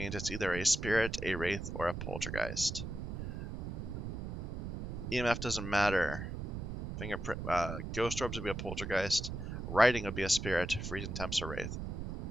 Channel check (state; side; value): noise; right; rumble, 5 dB below the sound